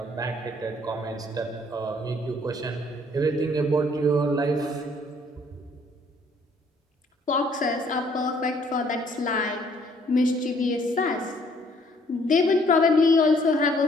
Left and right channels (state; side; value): normal; both; correlation 0.62